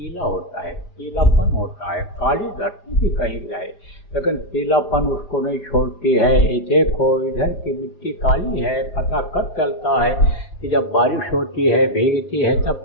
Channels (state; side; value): late; right; 5.5 ms